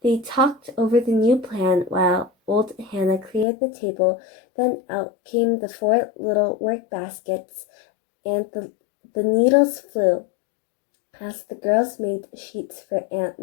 They talked over the new plan while old Hannah cleared the table. Then out came the 4 little work baskets, and the needles flew as the girls made sheets for Aunt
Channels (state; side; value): drops out; right; at 3.5 s